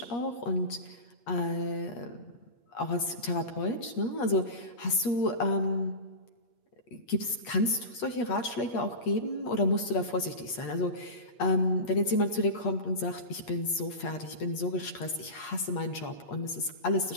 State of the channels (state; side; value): late; right; 8.4 ms